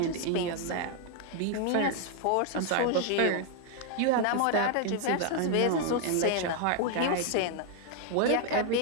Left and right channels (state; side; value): different; both; correlation 0.00